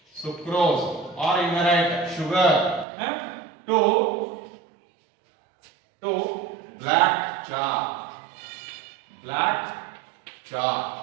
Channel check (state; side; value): drops out; left; at 2.9 s